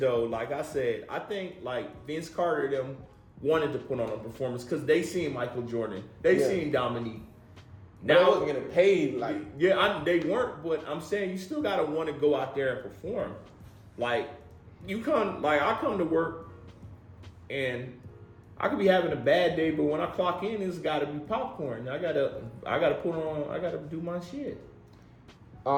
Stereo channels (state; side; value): identical; both; correlation 1.00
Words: Like I said, I think like Vince Carter them wanted to put on a performance because they seen Michael Jordan, they seen Dominique. Now I wasn't getting paid like. They weren't, but I'm saying you still gotta want to go out there and perform. Like I come to work and I could be having a bad day, but when I clock in, it's got to be popcorn. I gotta do my shit.